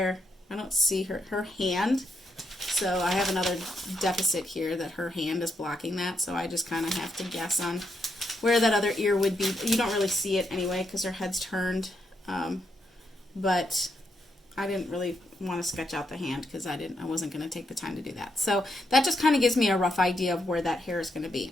I don't see her hand, so I have another deficit here that her hand is blocking that, so I just kind of have to guess on where that other ear would be. You don't really see it anyway because her head's turned, but I didn't really want to sketch out the hand because I wasn't going to take the time to do that. So that just kind of gives me a rough idea of where that hair is going to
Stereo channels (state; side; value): normal; both; correlation 0.80